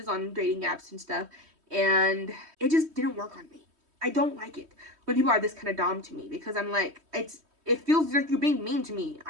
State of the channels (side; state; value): left; late; 3.2 ms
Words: on dating apps and stuff, and it just didn't work on me. I don't like it when people are this kind of dom to me because I'm like, it feels like you're being mean to me.